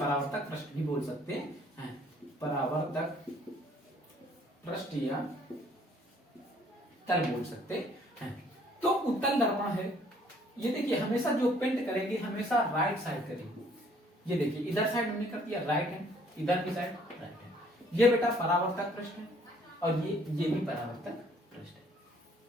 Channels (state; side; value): normal; both; correlation 0.61